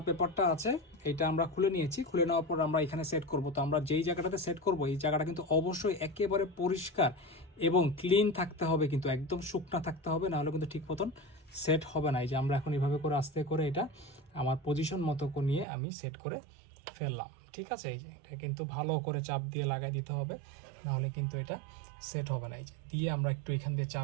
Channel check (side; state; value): left; drops out; at 15.7 s